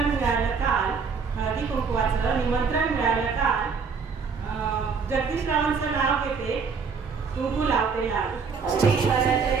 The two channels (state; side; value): quieter; left; 5.5 dB